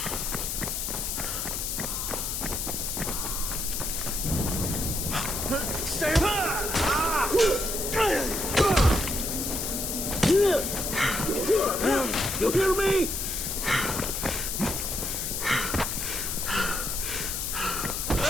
Stay You hear me?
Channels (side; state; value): left; noise; hiss, 2 dB below the sound